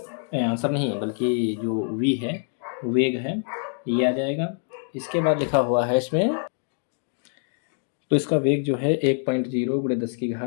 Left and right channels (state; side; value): silent; right; 62 dB below the other